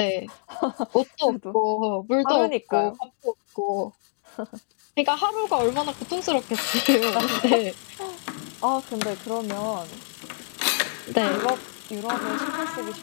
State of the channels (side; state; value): right; silent; digital silence